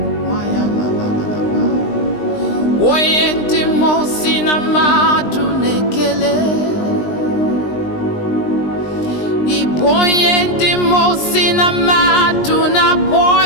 maya la la la la. Oyenti mosi na madu nekele, iboyenti mosi na madu na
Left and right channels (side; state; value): right; late; 20 ms